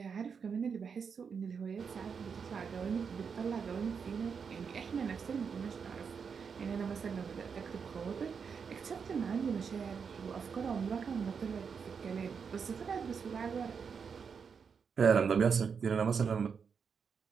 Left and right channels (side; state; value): left; quieter; 6.2 dB